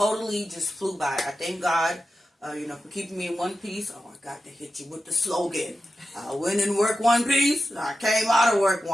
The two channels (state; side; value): normal; both; correlation 0.92